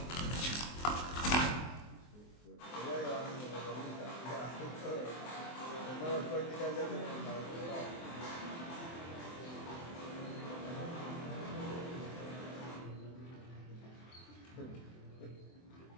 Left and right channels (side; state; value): right; late; 24 ms